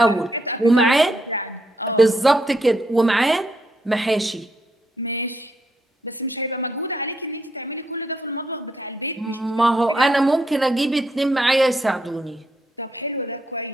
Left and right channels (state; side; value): normal; both; correlation 0.77